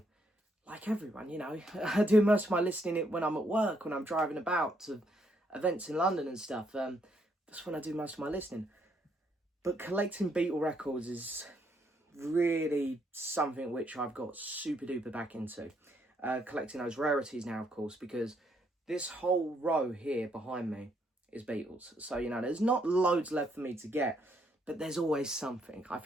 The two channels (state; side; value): normal; both; correlation 0.73